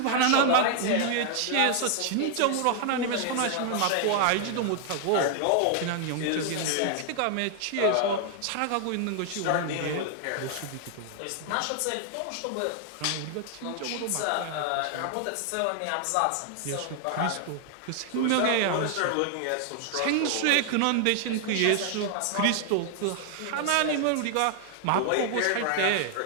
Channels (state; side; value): different; both; correlation 0.00